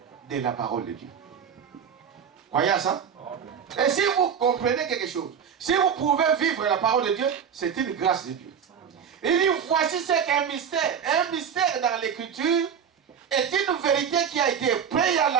de la parole de Dieu. Croyez à ça? Et si vous comprenez quelque chose, si vous pouvez vivre la parole de Dieu, c'est une grâce de Dieu. Il dit, voici ce qu'est un mystère. Un mystère dans l'écriture est une vérité qui a été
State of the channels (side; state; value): left; quieter; 7.6 dB